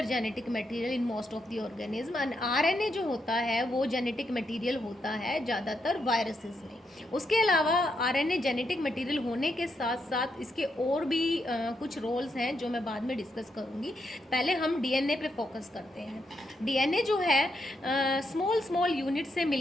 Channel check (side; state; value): both; normal; correlation 0.81